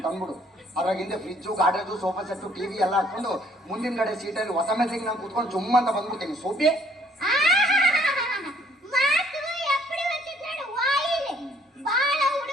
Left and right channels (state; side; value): normal; both; correlation 0.62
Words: ತಂದ್ಬಿಡು. ಅದ್ರಾಗಿಂದ ಫ್ರಿಜ್ಜು, ಗಾಡ್ರೇಜು, ಸೋಫಾ ಸೆಟ್ಟು, ಟಿವಿ ಎಲ್ಲ ಹಾಕೊಂಡು ಮುಂದಿನ ಕಡೆ ಸೀಟಲ್ಲಿ ಹೊಸ ಮೆಸಿಗೆ ನಾನು ಕೂತ್ಕೊಂಡು ಜುಮ್ ಅಂತ ಬಂದ್ಬಿಡ್ತೀನಿ. ಸೋಪಿ ಮಾತು ಎಪ್ಪಡಿ వచ్చినాడు ವಾಯಿಲೆ. ಬಾಳ